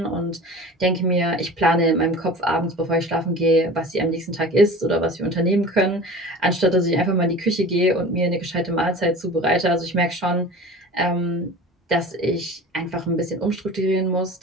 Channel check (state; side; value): normal; both; correlation 0.38